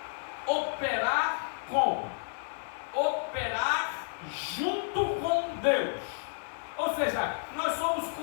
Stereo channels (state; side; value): silent; right; digital silence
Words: operar junto com Deus. Ou seja, nós somos